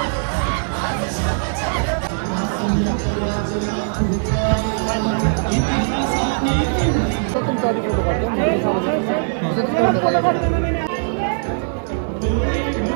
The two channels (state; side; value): silent; left; digital silence